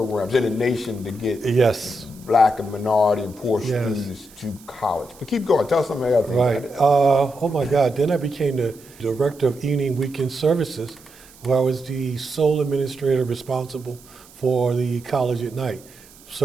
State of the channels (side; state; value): right; noise; hiss, 24 dB below the sound